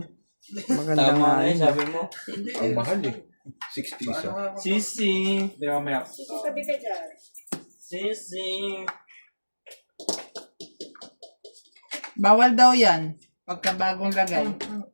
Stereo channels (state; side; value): inverted; both; correlation -1.00